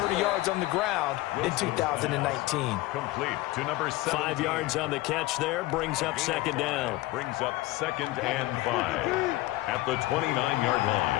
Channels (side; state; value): right; quieter; 18.5 dB